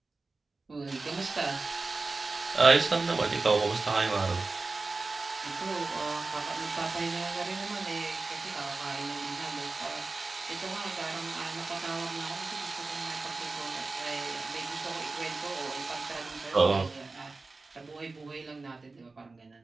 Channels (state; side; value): quieter; left; 3.7 dB